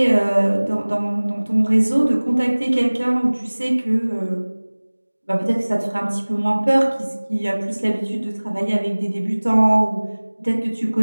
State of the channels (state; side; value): inverted; both; correlation -1.00